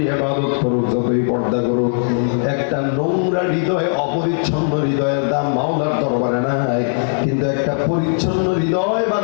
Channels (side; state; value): right; silent; 61 dB below the other